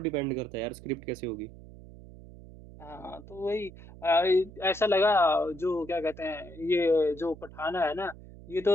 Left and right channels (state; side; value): noise; right; hum, 18 dB below the sound